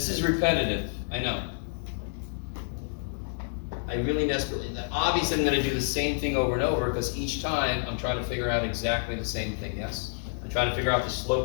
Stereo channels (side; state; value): right; silent; digital silence